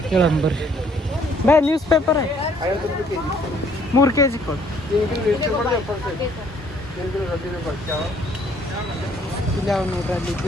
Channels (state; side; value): normal; both; correlation 0.63